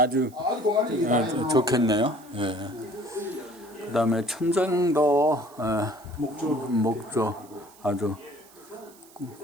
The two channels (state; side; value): noise; right; hiss, 25 dB below the sound